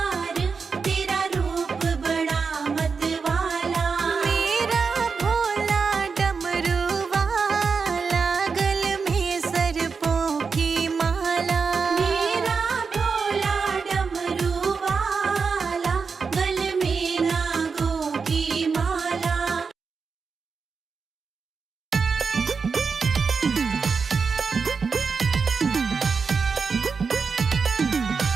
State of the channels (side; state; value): left; quieter; 5.2 dB